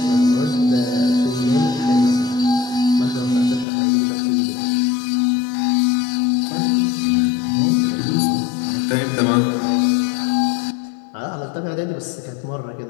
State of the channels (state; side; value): drops out; right; at 3.7 s